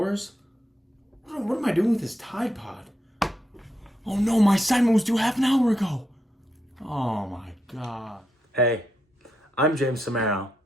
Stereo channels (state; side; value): normal; both; correlation 0.82